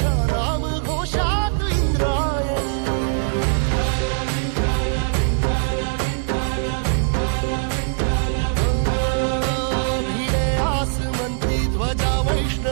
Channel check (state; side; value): silent; left; digital silence